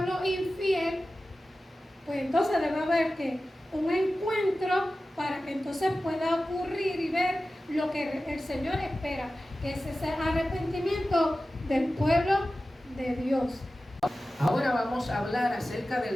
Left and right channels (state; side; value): normal; both; correlation 0.95